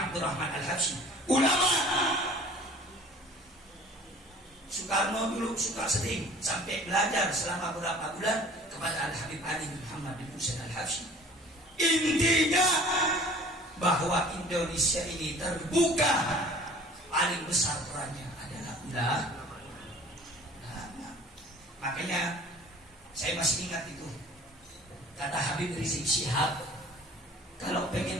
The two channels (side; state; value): both; normal; correlation 0.48